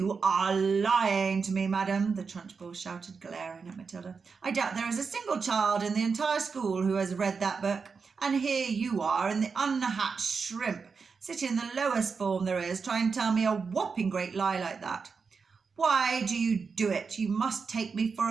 are lying to me, madam," the Trunchbull shouted, glaring at Matilda. "I doubt there is a single child in the entire school who has read that book, and here you are in the unhatched shrimp, sitting in the lowest form there is, trying to tell me a whopping great lie like that. Why do you do it? You must take me for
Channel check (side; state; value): left; quieter; 5.2 dB